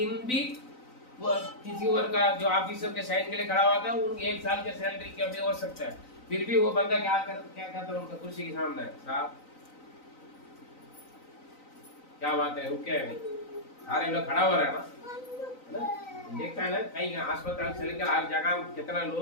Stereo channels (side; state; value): right; late; 3.9 ms